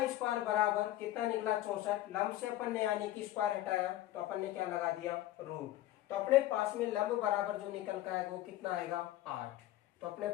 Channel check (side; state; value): right; quieter; 14.6 dB